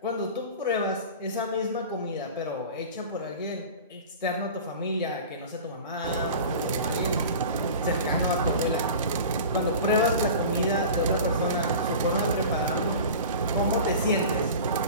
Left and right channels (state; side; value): inverted; both; correlation -0.36